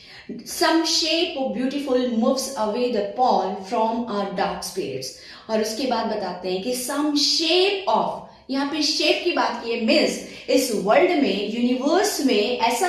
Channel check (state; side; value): identical; both; correlation 1.00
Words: some shape of beautiful moves away the pall from our dark spirits। और उसके बाद बताते हैं कि some shape of, यहाँ पे शेप की बात की है, मीन्स इस वर्ल्ड में, यूनिवर्स में ऐसा